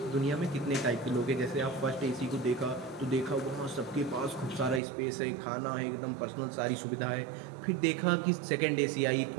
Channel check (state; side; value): drops out; left; at 4.8 s